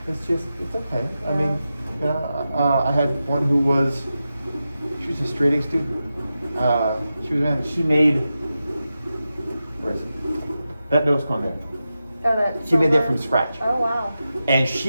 It's okay. Yeah. I mean, I had one who was She was a straight A student. She made, where is it? That nose cone there. Oh, that. She made that silver? from scratch. Oh, wow. And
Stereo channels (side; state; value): both; inverted; correlation -0.91